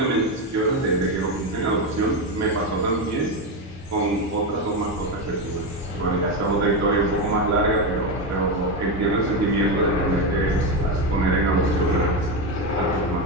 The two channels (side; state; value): both; normal; correlation 0.11